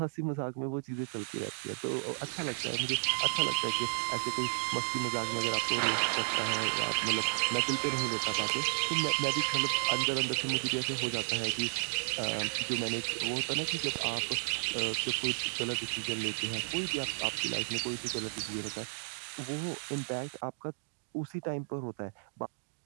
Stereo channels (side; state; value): left; silent; digital silence